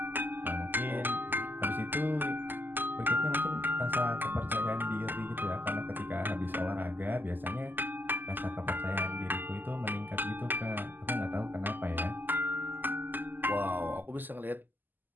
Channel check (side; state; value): left; late; 0.090 ms